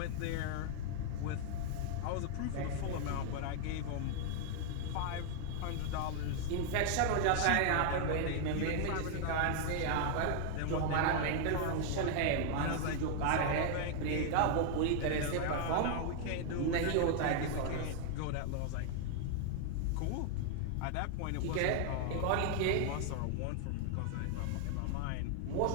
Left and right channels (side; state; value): both; different; correlation 0.00